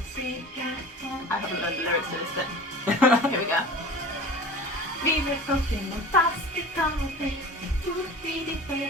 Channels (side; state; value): both; normal; correlation 0.38